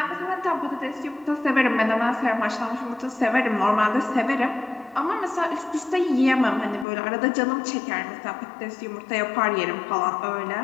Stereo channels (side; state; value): right; drops out; at 6.9 s